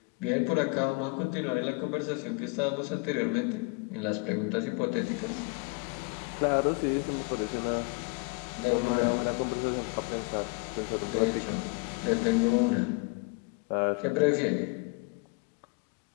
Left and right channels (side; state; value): right; quieter; 30.3 dB